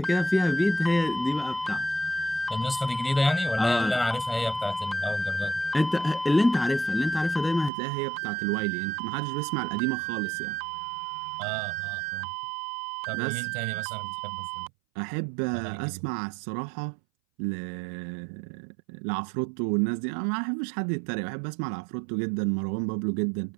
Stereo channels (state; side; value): drops out; left; at 7.7 s